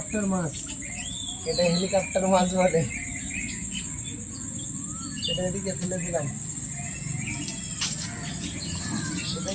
মাছ, এটা হেলিকপ্টার মাছ বলে। এটা এদিকে ফেলে দিলাম। এটা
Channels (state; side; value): identical; both; correlation 1.00